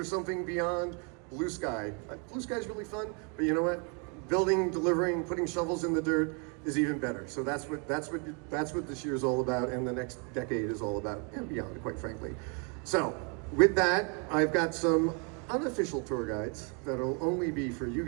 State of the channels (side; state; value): left; quieter; 34.8 dB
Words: something beyond blue sky. Blue sky is really fun, but you know what? Building, delivering, putting shovels in the dirt is even better. So that's what this year is all about, and the next decade is all about, and beyond, quite frankly. So with that, I've got some unofficial tour guides that'll only be for you